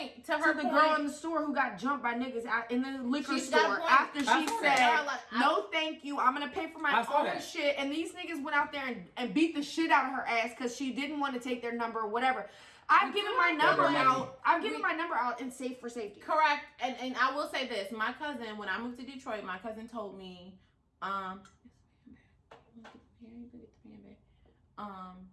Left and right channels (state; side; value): identical; both; correlation 1.00